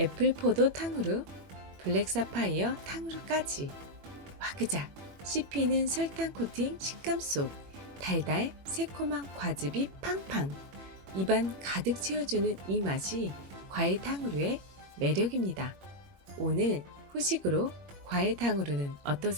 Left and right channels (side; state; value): left; late; 21 ms